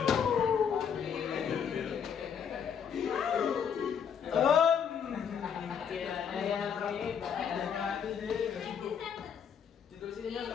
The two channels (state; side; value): quieter; right; 7.5 dB